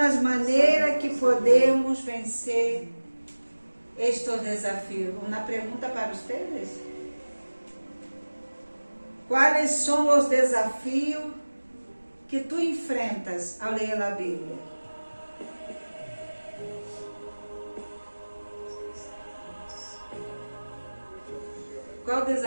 maneiras que podemos vencer estes desafios. Uma pergunta para vocês. Quais são os desafios que tu enfrentas ao ler a Bíblia? Qual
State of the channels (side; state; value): both; inverted; correlation -1.00